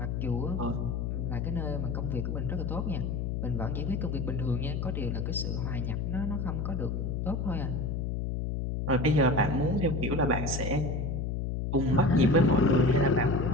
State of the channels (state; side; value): noise; left; hum, 1 dB below the sound